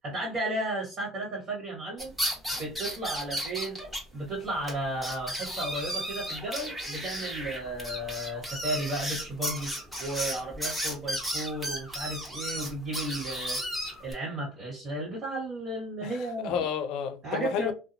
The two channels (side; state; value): both; normal; correlation 0.46